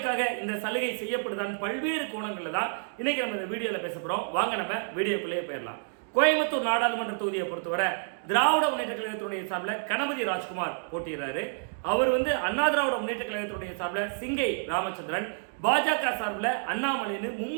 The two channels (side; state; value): left; silent; 59 dB below the other